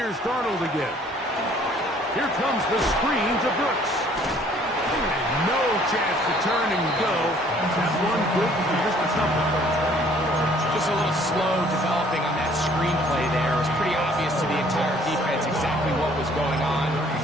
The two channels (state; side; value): normal; both; correlation 0.58